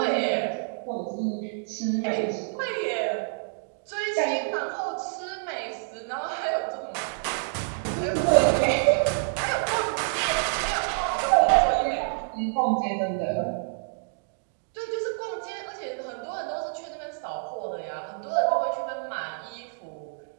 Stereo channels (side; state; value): left; silent; digital silence